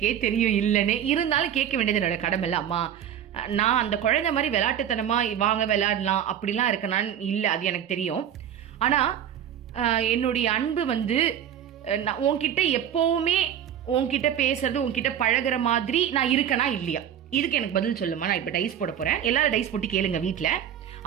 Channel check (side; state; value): left; quieter; 9.8 dB